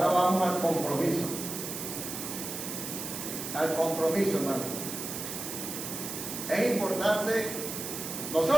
vamos al compromiso. Al compromiso, hermano. Es importante,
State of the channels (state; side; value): noise; right; hiss, 6 dB below the sound